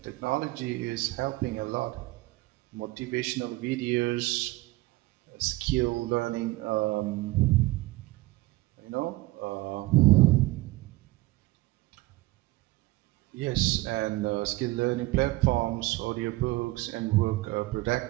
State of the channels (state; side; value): quieter; left; 19.8 dB